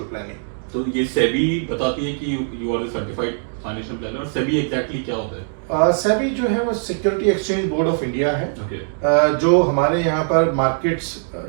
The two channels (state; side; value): silent; left; digital silence